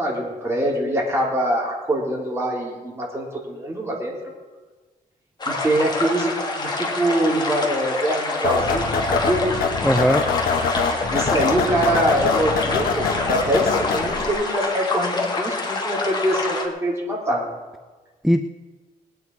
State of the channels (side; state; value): both; normal; correlation 0.50